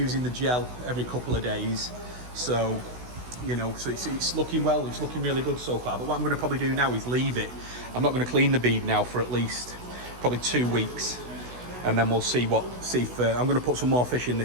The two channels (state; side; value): late; left; 16 ms